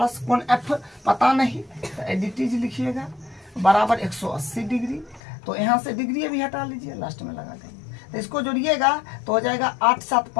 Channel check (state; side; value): drops out; right; at 5.2 s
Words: कोण एफ पता नहीं, तो एडिटीज लिखिएगा बराबर 180 डिग्री। तो यहाँ से डिग्री भी हटा लीजिए, लास्ट में लगा देंगे। तो इसको जोड़िएगा तो हो जाएगा 8 7